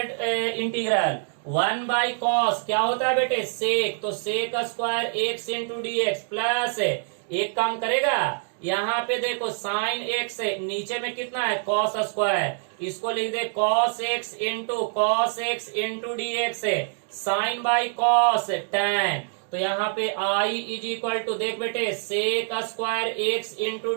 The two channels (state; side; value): silent; left; 61 dB below the other